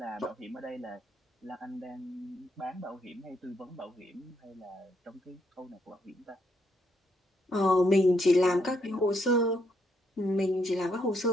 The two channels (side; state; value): both; normal; correlation 0.75